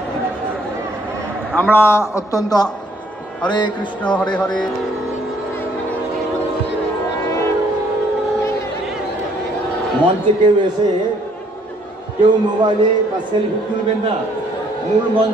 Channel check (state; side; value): normal; both; correlation 0.64